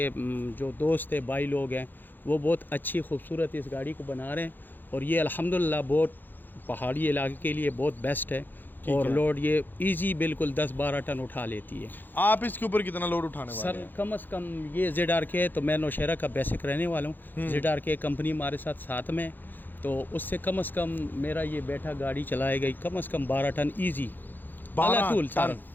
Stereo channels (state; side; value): late; right; 0.089 ms